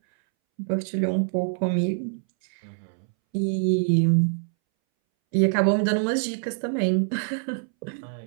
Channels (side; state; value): left; silent; 62 dB below the other